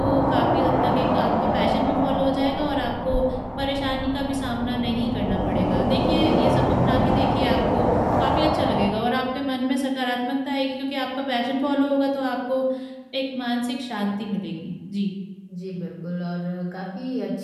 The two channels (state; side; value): identical; both; correlation 1.00